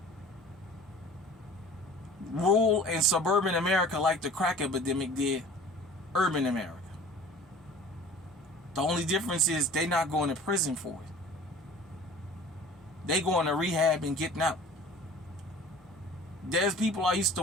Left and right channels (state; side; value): normal; both; correlation 0.44